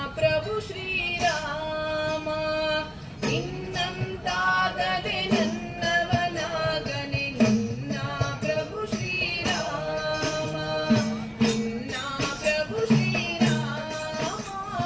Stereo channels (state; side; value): identical; both; correlation 1.00